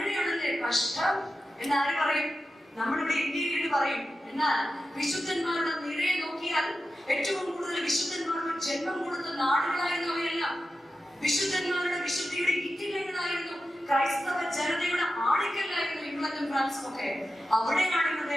കഷ്ടം എന്നാര് പറയും? നമ്മളിവിടെ ഇന്ത്യയിൽ പറയും. എന്നാൽ വിശുദ്ധന്മാരുടെ നിരയെ നോക്കിയാൽ ഏറ്റവും കൂടുതൽ വിശുദ്ധന്മാർക്ക് ജന്മം കൊടുത്ത നാടുകളായിരുന്നവയല്ല, വിശുദ്ധന്മാരുടെ വിശുദ്ധിയുടെ ഇറ്റിലങ്ങളായിരുന്നു, ക്രൈസ്തവ ജനതയുടെ ആണിക്കല്ലായിരുന്നു ഇംഗ്ലണ്ടും ഫ്രാൻസും ഒക്കെ. അവിടെയാണ് ഇന്ന്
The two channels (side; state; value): both; normal; correlation 0.92